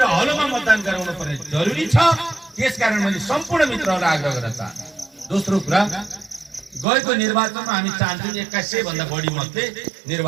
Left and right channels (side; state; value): left; drops out; at 6.9 s